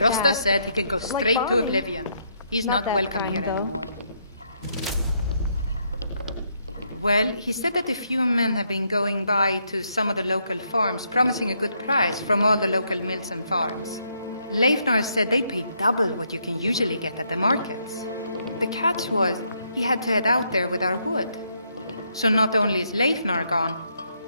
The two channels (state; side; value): inverted; both; correlation -0.75